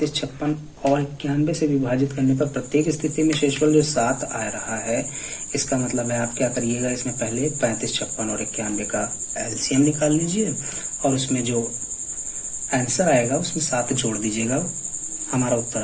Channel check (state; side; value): identical; both; correlation 1.00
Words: 56 और 91 से विभाजित करने पर प्रत्येक स्थिति में शेषफल जो 7 आ रहा है, इसका मतलब है आप क्या करिएगा, इसमें पहले 35, 56 और 91 का एलसीएम निकाल लीजिए और उसमें जो आंसर आएगा उसमें 7 जोड़ दीजिएगा, हमारा उत्तर